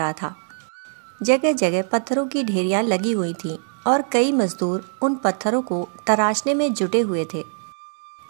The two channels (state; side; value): silent; left; digital silence